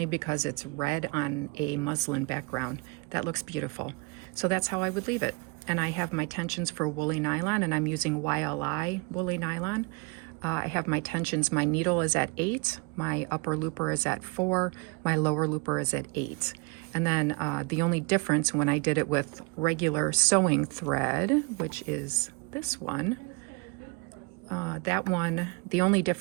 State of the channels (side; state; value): left; quieter; 29.9 dB